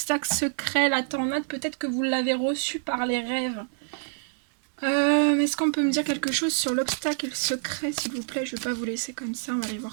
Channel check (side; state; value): left; silent; digital silence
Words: secret, la tornade, peut-être que vous l'avez reçu par les rêves. Est-ce qu'on peut me dire quelque chose sur l'obstacle secret, s'il vous plaît? Je ne vais pas vous laisser comme ça, on va aller voir